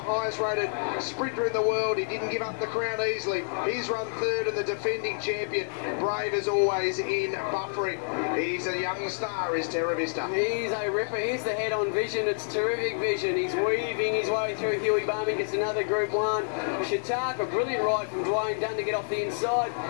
rated sprinter in the world, he didn't give up the crown easily. He's run third, and the defending champion, brave as always in buffering. He's a young star, is Terra Vista. He's a ripper. He's the head-on vision. It's terrific vision. He's weaving his way through. Hughie Bowmen gets another Group 1. Chautauqua, a brilliant ride from Dwayne Dunn to get off the inside.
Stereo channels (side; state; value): right; silent; 59 dB below the other